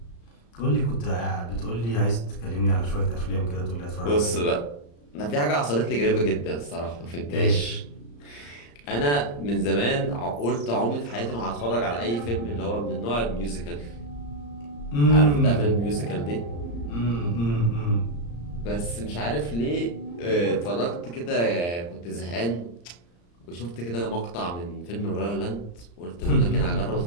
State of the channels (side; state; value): right; late; 34 ms